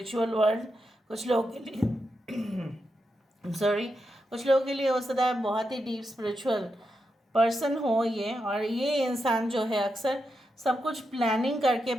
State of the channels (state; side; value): normal; both; correlation 0.86